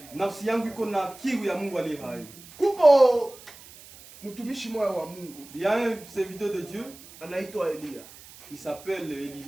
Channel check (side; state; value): right; noise; hiss, 20 dB below the sound